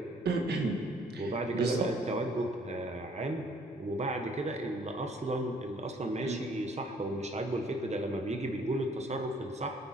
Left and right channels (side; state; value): both; normal; correlation 0.61